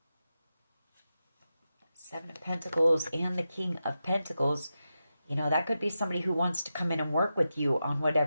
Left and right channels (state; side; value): inverted; both; correlation -0.90